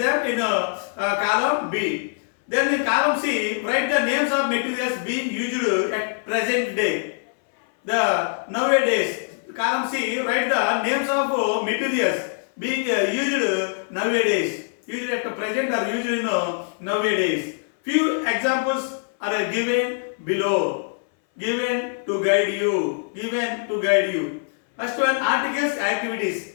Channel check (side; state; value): right; silent; 59 dB below the other